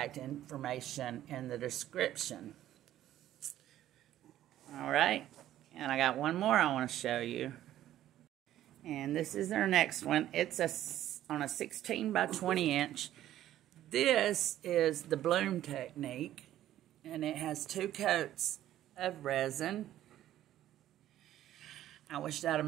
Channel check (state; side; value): quieter; left; 12.8 dB